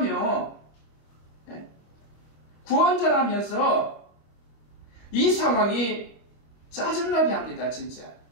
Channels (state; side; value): late; right; 25 ms